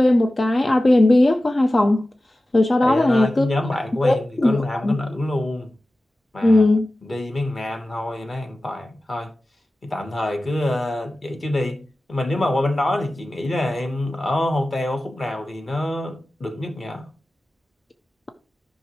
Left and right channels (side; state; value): both; normal; correlation 0.95